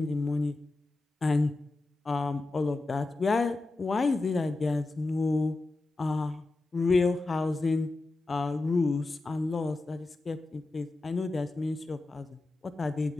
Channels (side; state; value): right; quieter; 3.1 dB